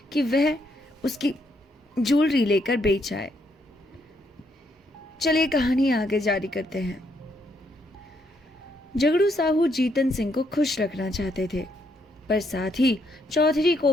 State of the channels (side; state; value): both; normal; correlation 0.74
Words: कि वह उसकी ज्वेलरी लेकर बेच आए। चलिए कहानी आगे जारी करते हैं। झगड़ू साहू जीतन सिंह को खुश रखना चाहते थे, पर साथ ही चौधरी को